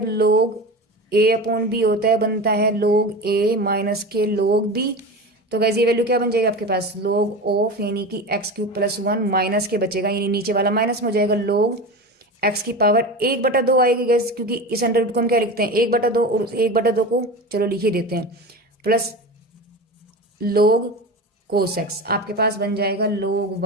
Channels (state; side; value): normal; both; correlation 0.28